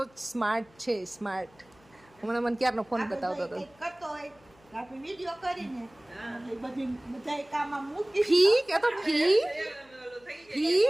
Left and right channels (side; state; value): left; noise; hum, 29 dB below the sound